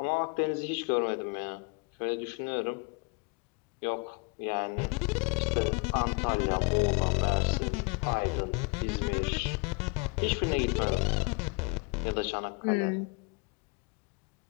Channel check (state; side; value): quieter; right; 30.0 dB